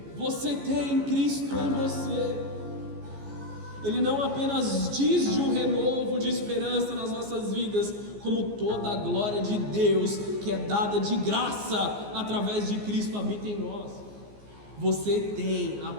Você tem Cristo em você. Ele não apenas diz de um renovo de esperança nas nossas vidas, como toda a glória de Deus que é dada de graça através de Cristo habita em nós. Você tem a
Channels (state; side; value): late; left; 15 ms